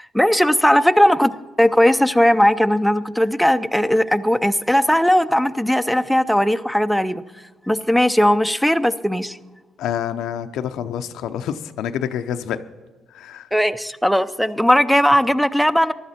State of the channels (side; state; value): both; normal; correlation 0.97